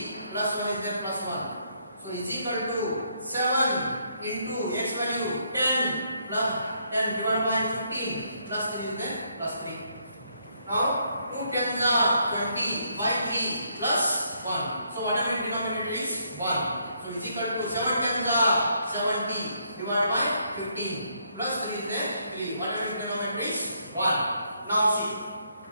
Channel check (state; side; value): inverted; both; correlation -0.72